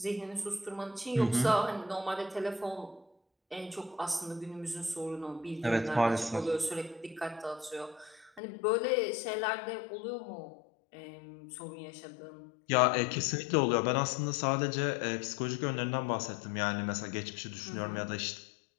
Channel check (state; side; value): drops out; right; at 8.4 s